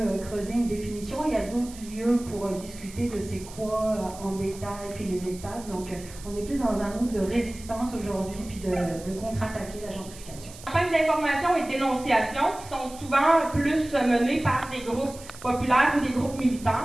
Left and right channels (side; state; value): right; noise; hiss, 17 dB below the sound